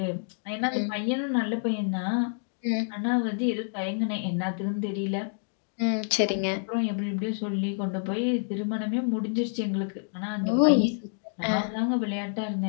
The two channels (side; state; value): right; silent; digital silence